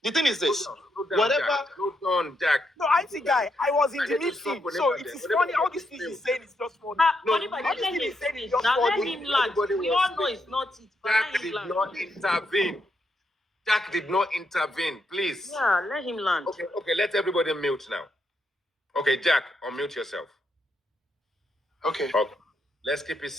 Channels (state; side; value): normal; both; correlation 0.80